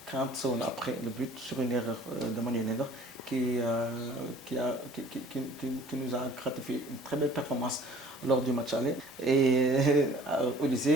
40 secondes après le but sur une erreur de Manuel Neuer qui nous a gratifié une très belle performance lors du match aller. Et au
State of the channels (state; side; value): normal; both; correlation 0.52